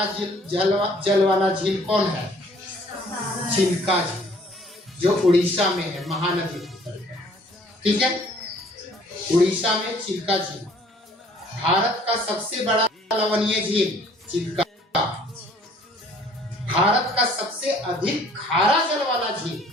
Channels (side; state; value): both; normal; correlation 0.57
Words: जल वाला झील कौन है, चिल्का झील, जो उड़ीसा में है, महानदी, ठीक है। उड़ीसा में चिल्का झील। भारत का सबसे बड़ा लवणीय झील चिल्का। भारत का सबसे अधिक खारा जल वाला झील